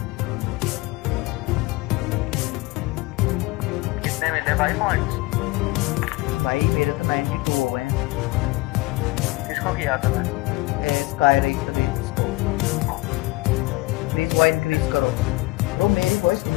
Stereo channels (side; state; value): right; quieter; 22.2 dB